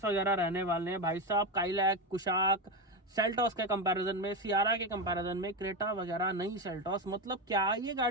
वगैरह रहने वाले हैं। भाई साहब काइलैक, कुशाक, सेल्टॉस के कंपैरिजन में, सियारा के कंपैरिजन में, क्रेटा वगैरह नई सेल्टॉस, मतलब क्या ये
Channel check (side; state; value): both; normal; correlation 0.15